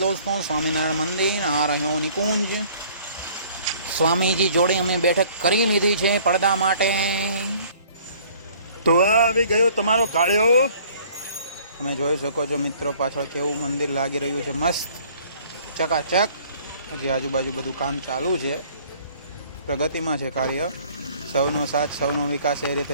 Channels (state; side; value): inverted; both; correlation -0.55